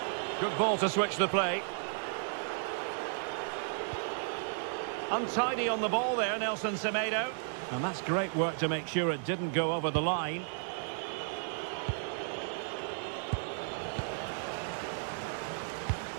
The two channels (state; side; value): silent; left; digital silence